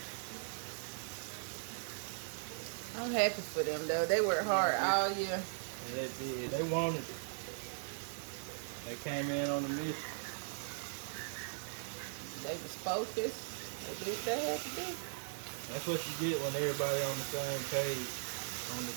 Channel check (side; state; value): left; silent; 52 dB below the other